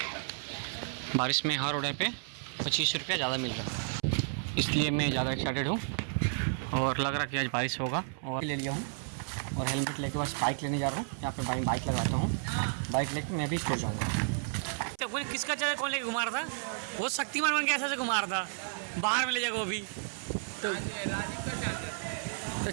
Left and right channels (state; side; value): silent; left; 56 dB below the other